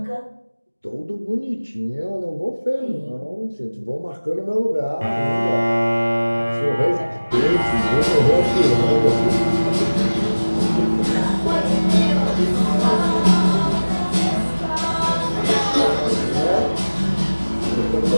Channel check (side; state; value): both; inverted; correlation -1.00